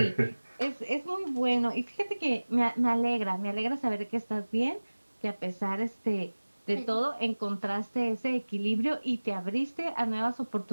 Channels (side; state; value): both; inverted; correlation -1.00